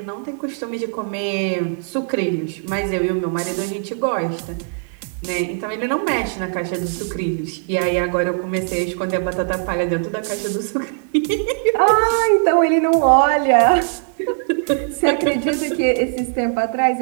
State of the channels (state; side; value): silent; left; 60 dB below the other